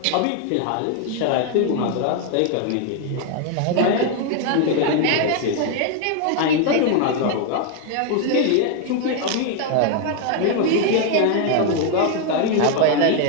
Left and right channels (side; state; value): both; different; correlation 0.01